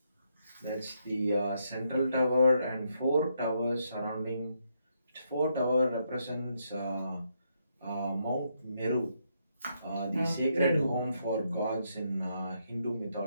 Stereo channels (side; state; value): both; inverted; correlation -0.77